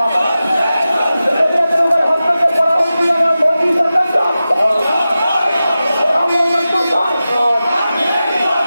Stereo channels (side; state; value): both; inverted; correlation -0.94